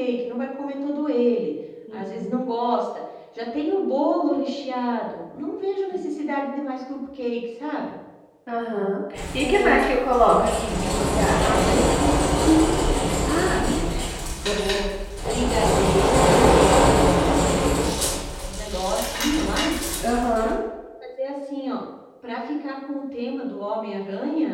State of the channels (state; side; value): identical; both; correlation 1.00